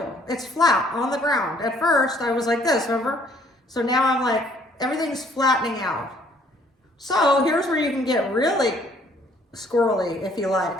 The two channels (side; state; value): both; normal; correlation 0.61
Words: It's flat on the ground. At first I was like this, remember? So now I'm like, everything's flattening out. So here's where you can get really squirrely if you